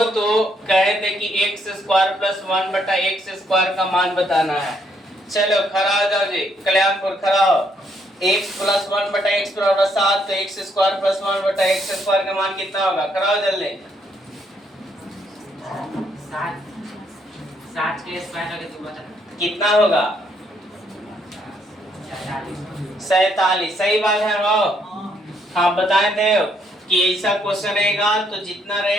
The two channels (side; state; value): both; normal; correlation 0.72